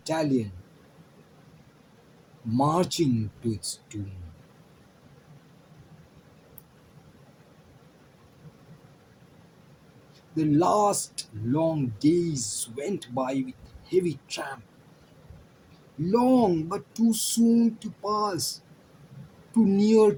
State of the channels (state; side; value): identical; both; correlation 1.00